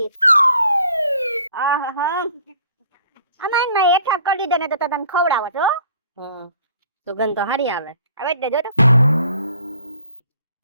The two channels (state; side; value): inverted; both; correlation -0.55